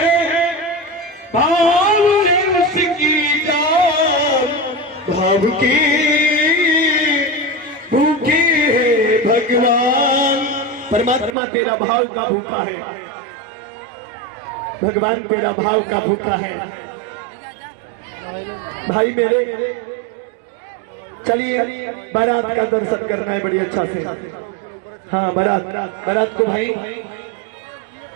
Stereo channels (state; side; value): drops out; left; at 11.4 s